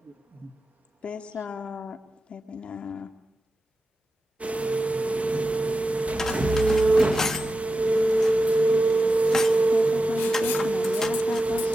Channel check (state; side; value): normal; both; correlation 0.91